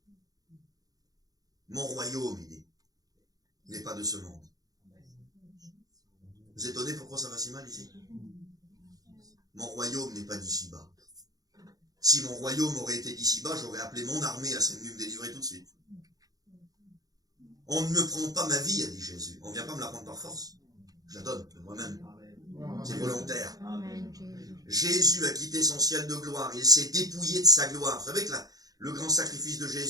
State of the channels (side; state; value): left; late; 0.18 ms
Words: Mon royaume, il dit, n'est pas de ce monde. Vous êtes étonné pourquoi ça va si mal ici? Mon royaume n'est pas d'ici-bas. Si mon royaume aurait été d'ici-bas, j'aurais appelé mon armée, elle serait venue me délivrer tout de suite. On ne me prend pas ma vie, a dit Jésus. On ne vient pas me la prendre par force. Je la donne de moi-même. C'est volontaire. Jésus a quitté son ciel de gloire. Il s'est dépouillé de sa gloire. Vous savez que le grand sacrifice de